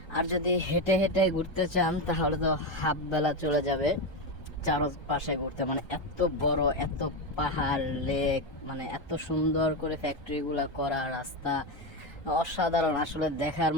আর যদি হেঁটে হেঁটে ঘুরতে চান তাহলে তো হাফ বেলা চলে যাবে চারপাশে ঘুরতে। মানে এত বড়, এত পাহাড়, লেক, মানে এত সুন্দর করে ফ্যাক্টরিগুলো করা, রাস্তা অসাধারণ, আসলে দেখার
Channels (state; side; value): late; right; 1.3 ms